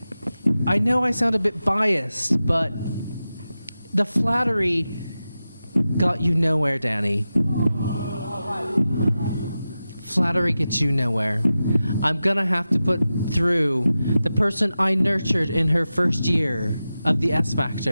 I know I sound a bit biased, but the flattery got you nowhere, Danny. Flattery gets you nowhere. I'm going to have to put through the person I nurtured in her first year of the S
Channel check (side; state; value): both; inverted; correlation -0.93